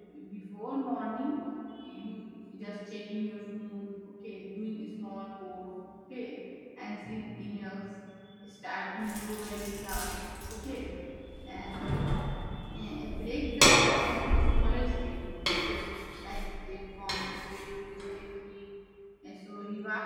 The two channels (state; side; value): identical; both; correlation 1.00